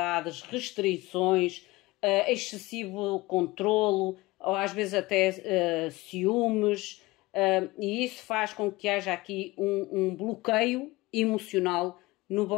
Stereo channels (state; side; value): quieter; right; 20.9 dB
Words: restrições, excessivo controlo, ou às vezes até ciúmes, e isso faz com que haja aqui um bloqueio emocional no